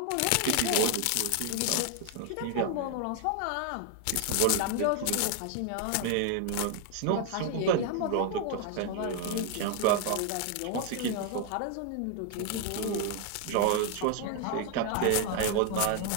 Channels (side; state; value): both; different; correlation 0.00